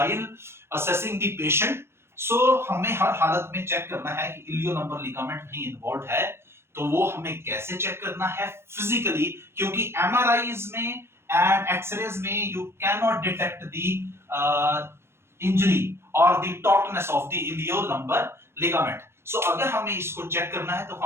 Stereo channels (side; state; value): left; late; 0.12 ms